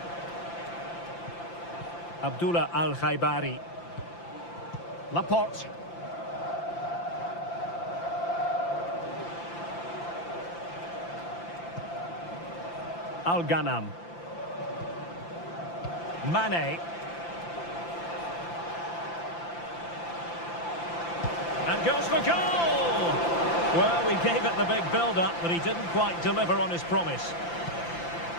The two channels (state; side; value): late; right; 5.9 ms